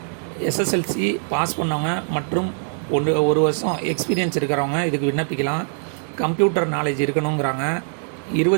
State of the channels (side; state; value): left; silent; 63 dB below the other